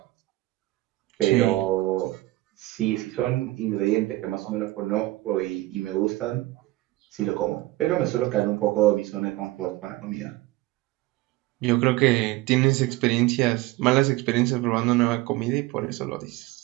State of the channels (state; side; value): quieter; left; 18.6 dB